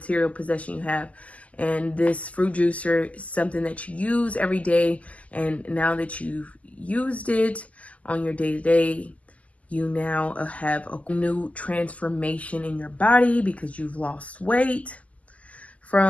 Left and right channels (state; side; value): late; right; 0.070 ms